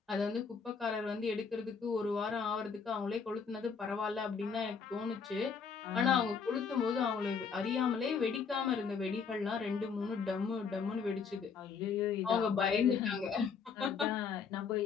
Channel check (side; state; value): right; quieter; 5.9 dB